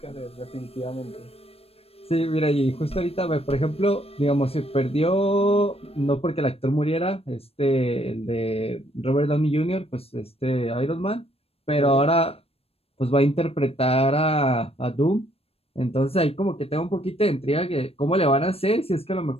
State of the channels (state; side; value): late; right; 0.28 ms